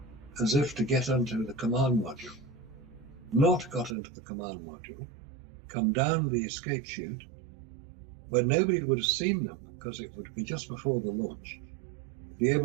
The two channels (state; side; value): drops out; left; at 4.0 s